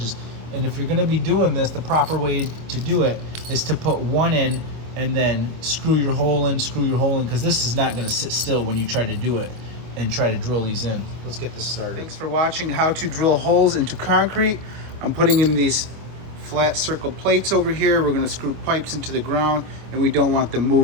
And if you're gonna be doing this, the proper way to do it is to put 1 in and then screw your hole in, because this is not gonna sit still when you try to do it and try to drill these in. Let's get this started. Thanks for watching how to drill holes into concrete. I'm putting in these flat circle plates over here. We're gonna screw pipes into the ground, and we don't want them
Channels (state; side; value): late; left; 25 ms